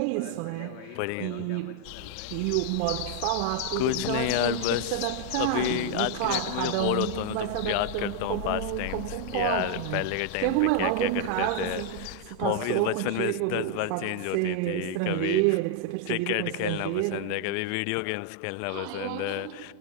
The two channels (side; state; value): both; different; correlation 0.00